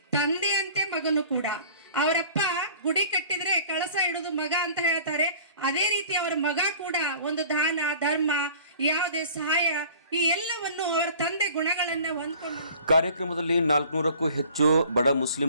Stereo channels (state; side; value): inverted; both; correlation -0.47